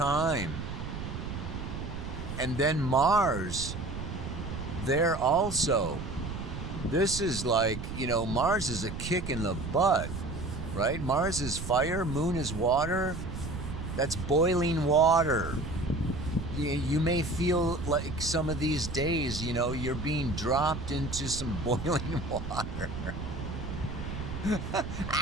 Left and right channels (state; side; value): noise; right; rumble, 6 dB below the sound